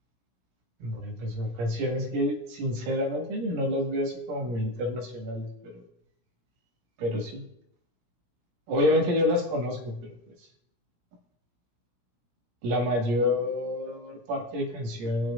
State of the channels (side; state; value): left; late; 17 ms